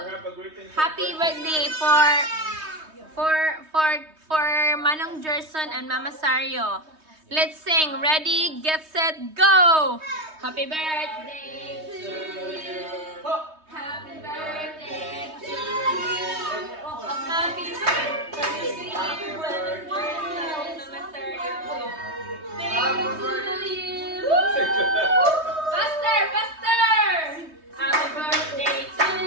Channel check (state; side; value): late; left; 3.2 ms